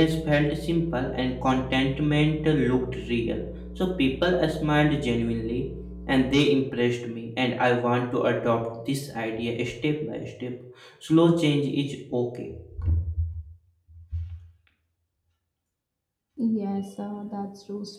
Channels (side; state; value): both; identical; correlation 1.00